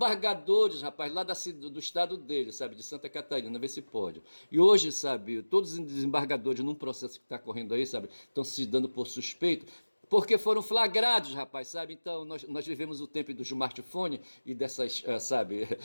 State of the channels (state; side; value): inverted; both; correlation -1.00